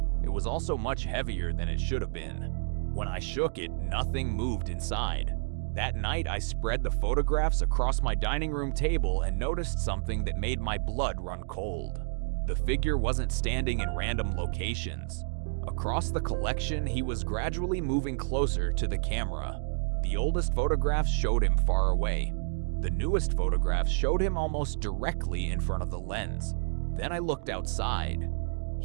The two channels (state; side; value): silent; left; digital silence